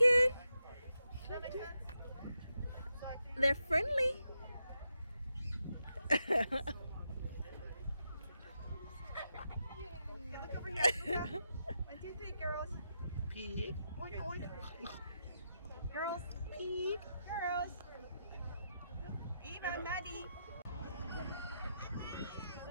They're friendly. Look over here. Look up. 1, 2, 3, girls. Pig. Oink, oink. Girls. Pig. Girls. Eva, Maddie.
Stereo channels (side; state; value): both; inverted; correlation -0.84